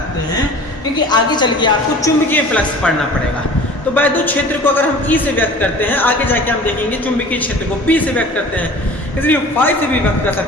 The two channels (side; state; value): both; normal; correlation 0.43